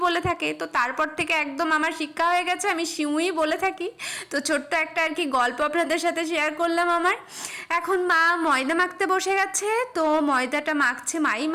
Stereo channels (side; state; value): both; identical; correlation 1.00